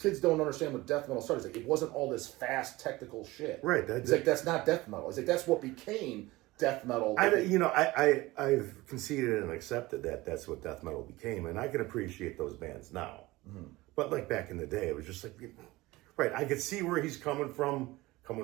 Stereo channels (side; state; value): left; quieter; 19.8 dB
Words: don't understand what death metal started. He's like, it wasn't all this fast technical shit. Right. He's like, that's not death metal. He's like, that's what became death metal. I've conceded and accepted that that's what death metal became, and I can appreciate those bands now. Mm-hmm. But like back in the day, it was just like, right. I could see where he's coming from